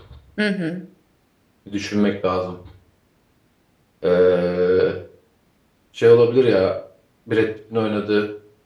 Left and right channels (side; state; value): both; identical; correlation 1.00